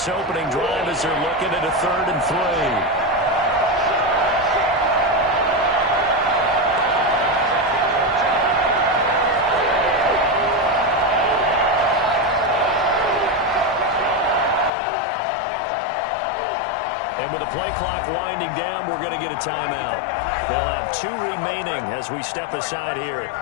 opening drive as they're looking at a 3rd and 3. With the play clock winding down, we're going to get a timeout. They'll have 2 remaining as we step aside here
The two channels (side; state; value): right; drops out; at 14.7 s